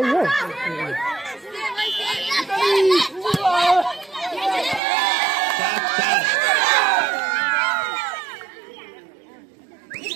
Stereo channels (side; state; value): left; drops out; at 4.8 s